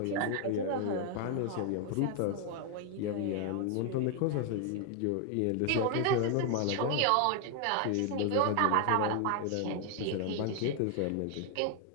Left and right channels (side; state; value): both; different; correlation 0.00